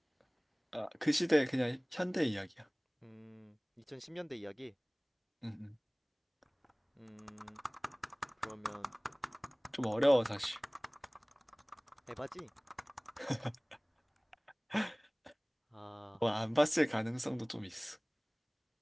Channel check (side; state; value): both; identical; correlation 1.00